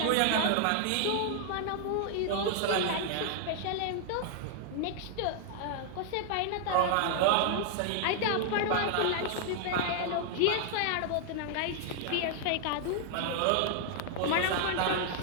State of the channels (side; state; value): both; different; correlation 0.00